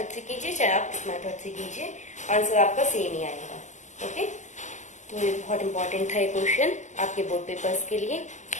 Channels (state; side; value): late; right; 0.34 ms